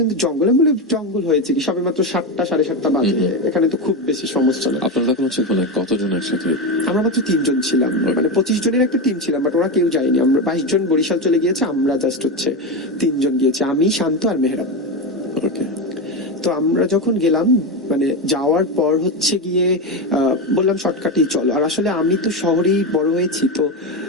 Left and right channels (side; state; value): both; normal; correlation 0.14